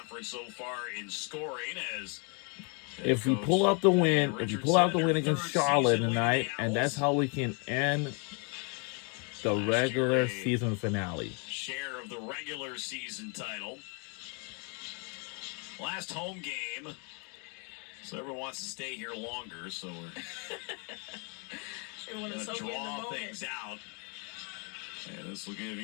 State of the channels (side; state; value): right; quieter; 35.8 dB